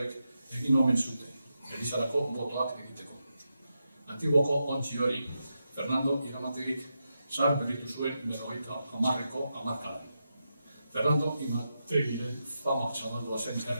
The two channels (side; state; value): both; inverted; correlation -0.87